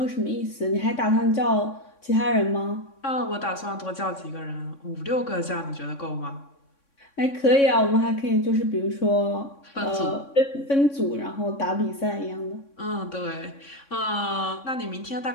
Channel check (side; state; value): right; late; 3.6 ms